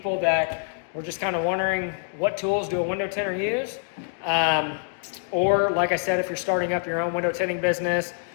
that were just kind of wondering what tools do a window tinter use. Or like I said, if you're starting up your own window tinting business,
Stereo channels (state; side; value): silent; right; digital silence